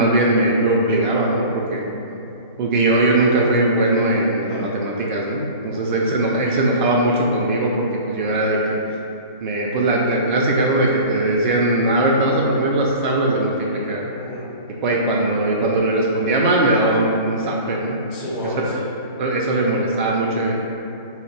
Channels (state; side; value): inverted; both; correlation -0.37